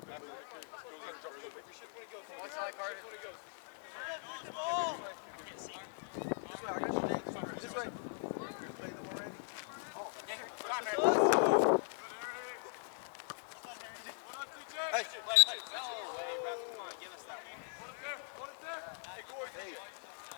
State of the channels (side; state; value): right; silent; 51 dB below the other